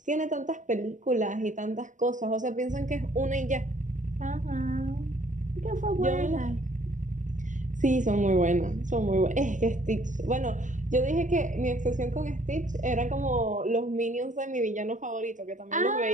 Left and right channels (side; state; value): left; late; 0.37 ms